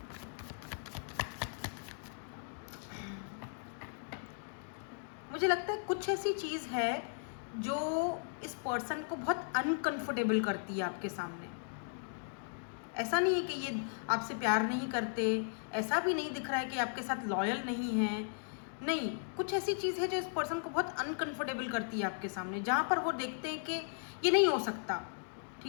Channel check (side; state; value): right; silent; digital silence